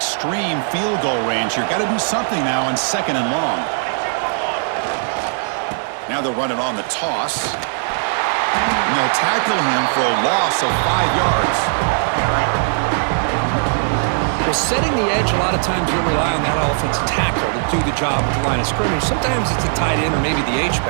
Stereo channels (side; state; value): left; silent; 67 dB below the other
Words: field goal range here. Got to do something now on 2nd and long. Now they'll run it on the toss. And they'll tackle him for a loss of 5 yards. Well, setting the edge, a lot of times you'll rely on that offensive tackle to do the job at the line of scrimmage. Sometimes it's a tight end or maybe the